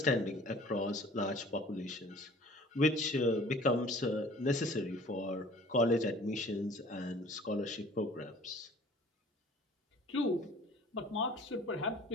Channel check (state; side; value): normal; both; correlation 0.49